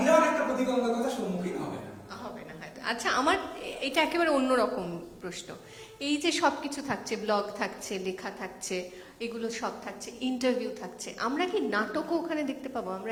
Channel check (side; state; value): both; identical; correlation 1.00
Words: একটা প্রতিবন্ধকতার সম্মুখীন হবে না। হবে না হয়তো। আচ্ছা, আমার এটা একেবারে অন্যরকম প্রশ্ন। এই যে সবকিছু থাকছে, ব্লগ থাকছে, লেখা থাকছে, এগুলো সব থাকছে, ইন্টারভিউ থাকছে, আমরা কি নাটকও ওখানে দেখতে পাবো?